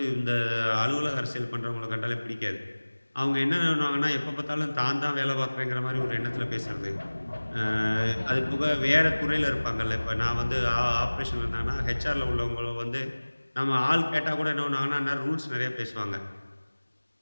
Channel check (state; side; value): inverted; both; correlation -1.00